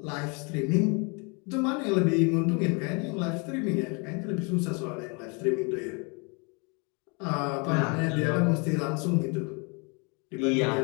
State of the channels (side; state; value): right; quieter; 32.6 dB